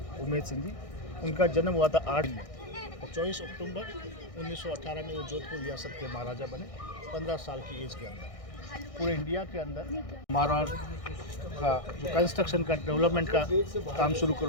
उमेद सिंह जी। उनका जन्म हुआ था 8 में और 24 अक्टूबर 1918 में वो जोधपुर रियासत के महाराजा बने 15 साल की एज के अंदर। पूरे इंडिया के अंदर मारवाड़ का जो कंस्ट्रक्शन का डेवलपमेंट का काम शुरू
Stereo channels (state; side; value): late; right; 1.6 ms